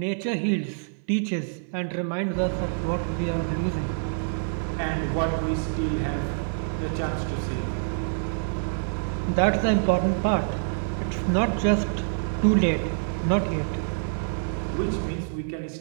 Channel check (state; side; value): silent; left; 57 dB below the other